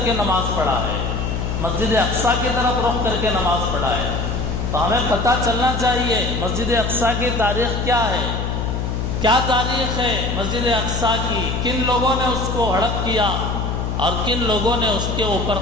کے نماز پڑھا ہے، مسجد اقصیٰ کی طرف رخ کر کے نماز پڑھا ہے۔ تو ہمیں پتہ چلنا چاہیے مسجد اقصیٰ کی تاریخ کیا ہے، کیا تاریخ ہے مسجد اقصیٰ کی، کن لوگوں نے اس کو ہڑپ کیا اور کن لوگوں نے اس کے اوپر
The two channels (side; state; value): left; noise; hum, 2 dB below the sound